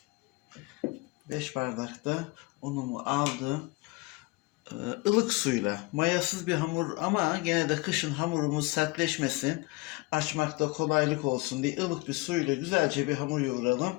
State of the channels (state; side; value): quieter; right; 24.0 dB